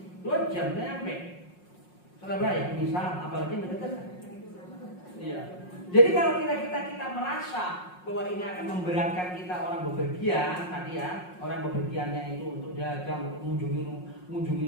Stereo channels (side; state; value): right; late; 5.5 ms